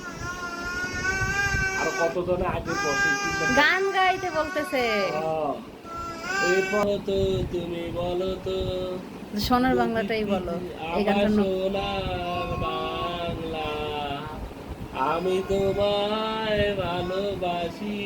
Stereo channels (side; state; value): both; identical; correlation 1.00